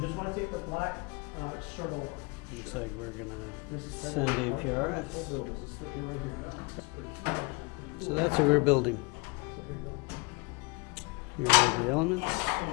just want to take the black circle off. Looks like we're gonna send APRS. So that's what we're building. Here are the elements.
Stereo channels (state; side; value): quieter; right; 27.7 dB